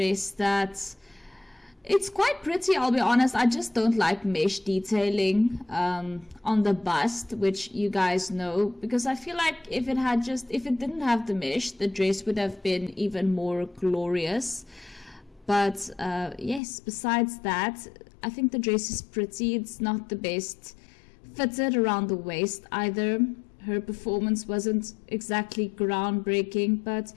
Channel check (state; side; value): drops out; right; at 16.6 s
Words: that it's quite pretty, I'll be honest. I just don't like mesh detailing on the bust, which you guys know, because I feel like if it didn't have the mesh, the dress would have been even more glorious. But yes, besides that, I think the dress is pretty. It's not the best fitted around the waist either. Her performance wasn't exactly groundbreaking, but